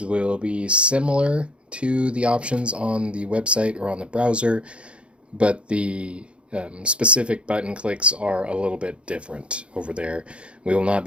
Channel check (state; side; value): late; left; 0.058 ms